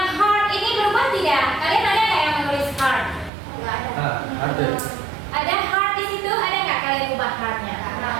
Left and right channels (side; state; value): left; drops out; at 3.3 s